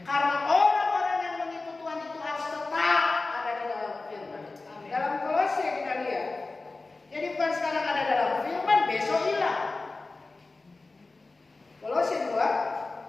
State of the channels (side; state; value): right; quieter; 3.5 dB